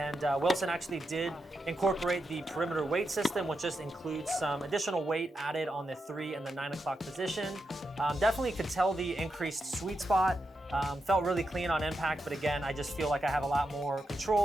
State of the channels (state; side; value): normal; both; correlation 0.86